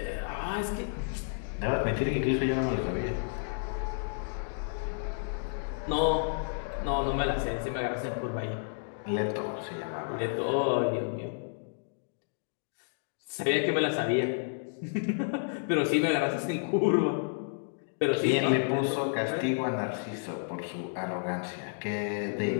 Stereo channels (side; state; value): right; silent; digital silence